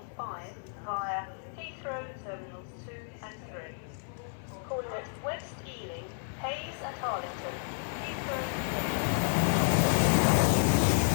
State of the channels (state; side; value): silent; right; 57 dB below the other